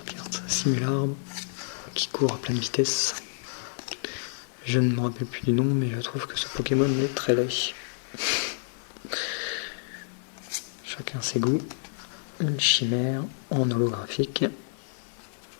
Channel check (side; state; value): right; silent; digital silence